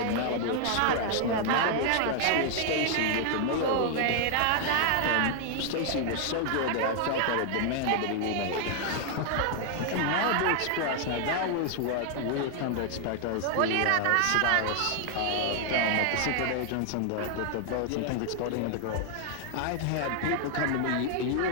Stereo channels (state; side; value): different; both; correlation 0.00